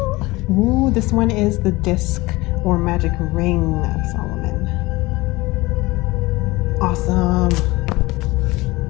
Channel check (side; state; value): right; quieter; 21.0 dB